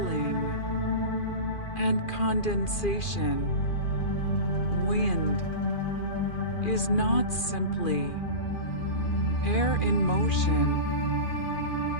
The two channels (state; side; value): late; right; 2.4 ms